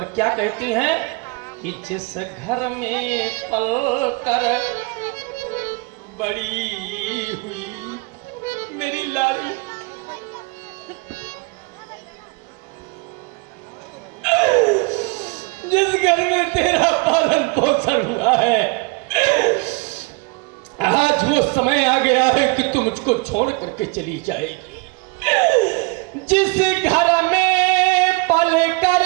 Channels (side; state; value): left; quieter; 28.5 dB